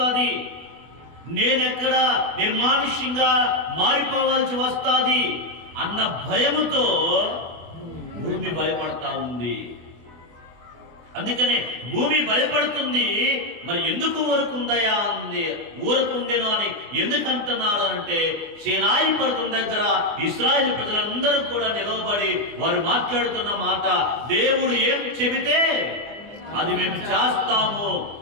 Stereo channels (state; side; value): late; left; 24 ms